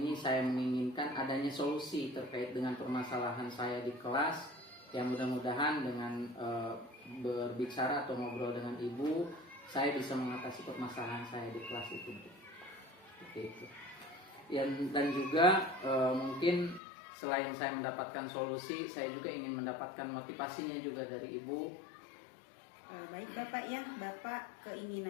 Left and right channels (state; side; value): drops out; right; at 16.8 s